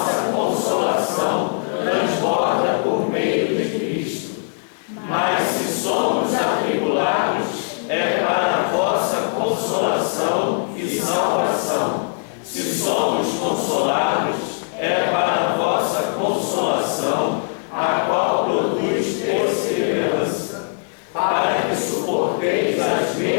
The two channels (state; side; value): silent; right; 62 dB below the other